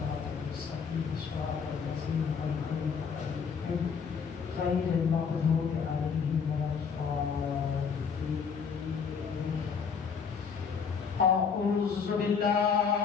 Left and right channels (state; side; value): quieter; right; 6.1 dB